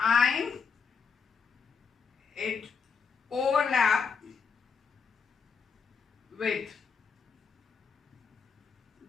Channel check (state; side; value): quieter; right; 5.9 dB